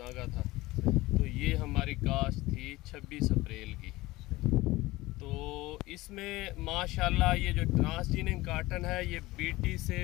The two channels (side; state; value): right; quieter; 19.5 dB